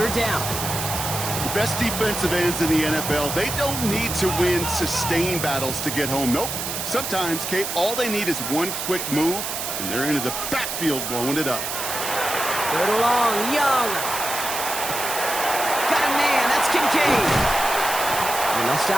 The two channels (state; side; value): noise; right; hiss, 4 dB below the sound